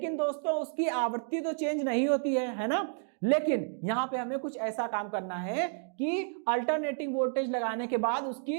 दोस्तों उसकी आवृत्ति तो चेंज नहीं होती है ना। लेकिन यहां पे हमें कुछ ऐसा काम करना है कि अल्टरनेटिंग वोल्टेज लगाने के बाद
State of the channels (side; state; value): left; silent; digital silence